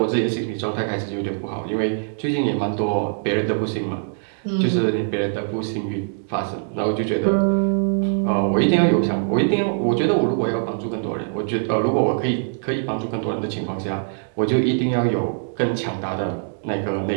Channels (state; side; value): silent; left; digital silence